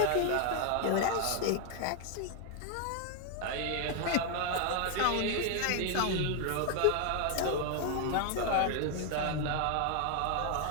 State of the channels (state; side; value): different; both; correlation 0.01